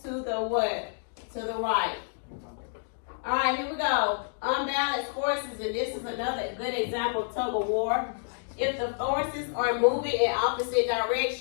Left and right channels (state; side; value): silent; right; digital silence